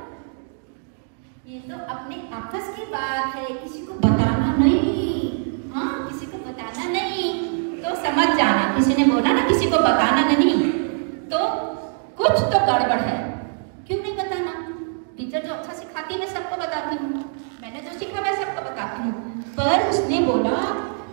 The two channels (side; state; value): left; silent; 61 dB below the other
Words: ये तो अपने आपस की बात है, किसी को बताना नहीं, हाँ किसी को बताना नहीं। तो समझ जाना, किसी ने बोला ना किसी को बताना नहीं, तो कुछ तो गड़बड़ है। क्यों नहीं बताना? टीचर जो अच्छा सिखाती है मैं सबको बताती हूँ, मैंने जो सीखा मैं सबको बताती हूँ, पर उसने बोला